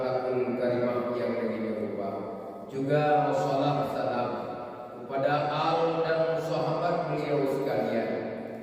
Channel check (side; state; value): both; identical; correlation 1.00